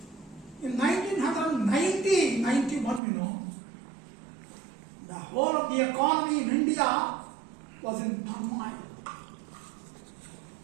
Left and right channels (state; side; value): drops out; left; at 3.0 s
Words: In 1991, the whole of the economy in India was in turmoil.